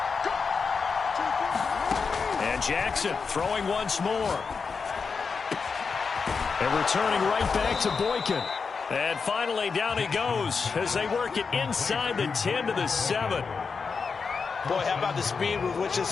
And Jackson throwing once more. And returning right back to Boykin. And finally, down he goes as they work it inside the 10 to the 7. Boy, how about the speed with which this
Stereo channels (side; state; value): right; quieter; 5.2 dB